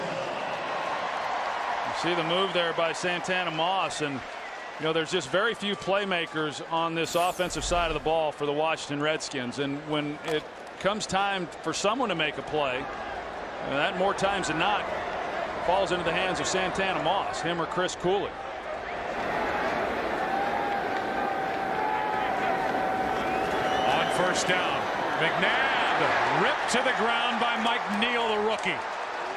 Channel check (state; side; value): identical; both; correlation 1.00